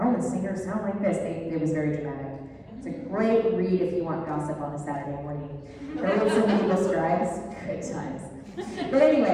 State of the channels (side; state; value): both; identical; correlation 1.00